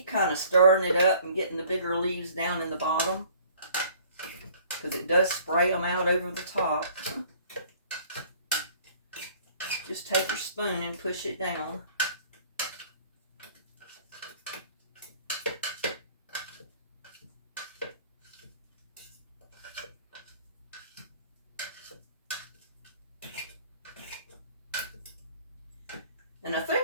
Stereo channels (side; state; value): both; inverted; correlation -0.54